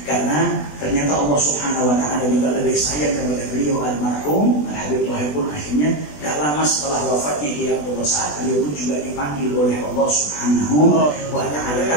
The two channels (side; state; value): right; late; 20 ms